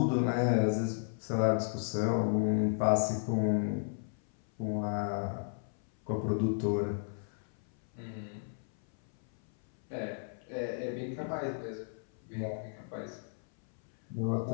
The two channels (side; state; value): right; silent; 55 dB below the other